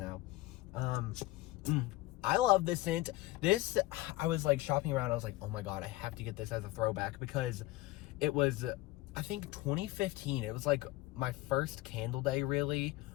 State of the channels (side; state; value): right; quieter; 18.7 dB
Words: I love this scent. This, I was, like, shopping around. I was like, oh my god, I have to get this as a throwback, because it was, I think, 2015. It was, like, my first candle day, really.